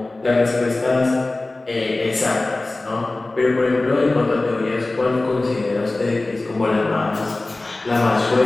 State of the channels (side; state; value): right; quieter; 3.0 dB